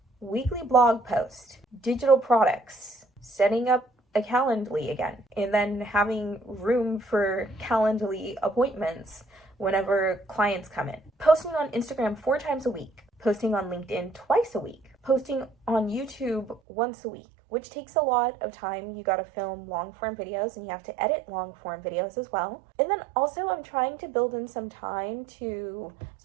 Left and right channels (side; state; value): left; drops out; at 16.6 s